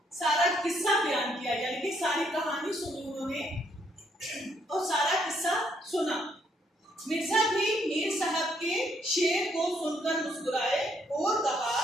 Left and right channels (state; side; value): normal; both; correlation 0.71